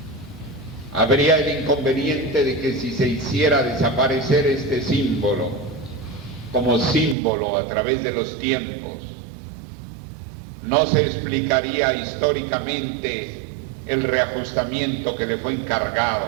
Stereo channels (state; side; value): drops out; left; at 7.2 s